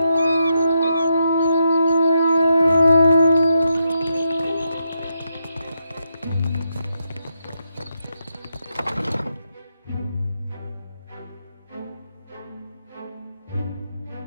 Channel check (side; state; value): both; inverted; correlation -0.82